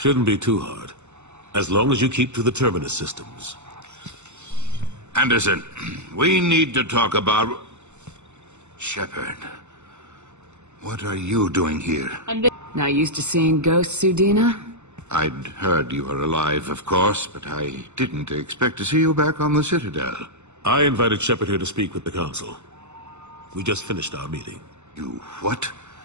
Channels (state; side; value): late; left; 0.83 ms